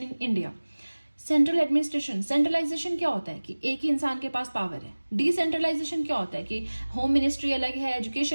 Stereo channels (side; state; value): both; inverted; correlation -1.00